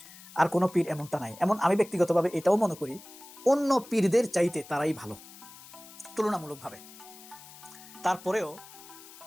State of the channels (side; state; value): left; noise; hiss, 18 dB below the sound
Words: আর কোনো পীর এমনটা নাই। এমন আমি ব্যক্তিগতভাবে এটাও মনে করি অন্য পীরদের চাইতে তারাই ভালো তুলনামূলকভাবে। তারপরেও